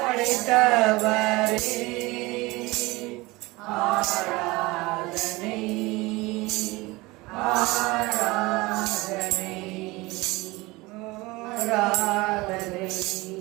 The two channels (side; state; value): left; quieter; 22.1 dB